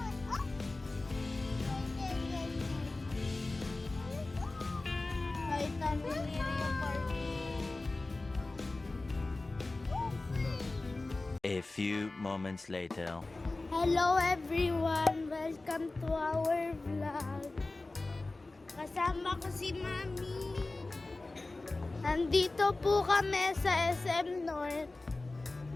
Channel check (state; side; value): quieter; right; 3.1 dB